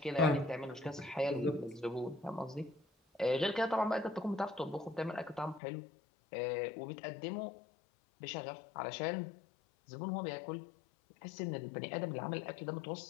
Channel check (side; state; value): right; drops out; at 5.6 s